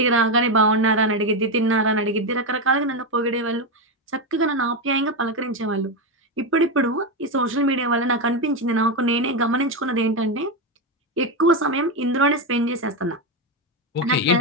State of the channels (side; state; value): both; normal; correlation 0.09